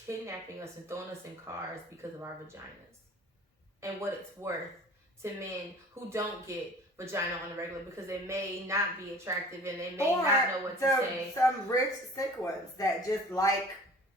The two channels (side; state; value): both; normal; correlation 0.46